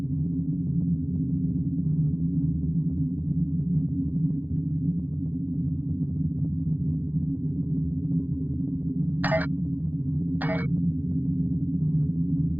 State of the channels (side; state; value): left; late; 0.084 ms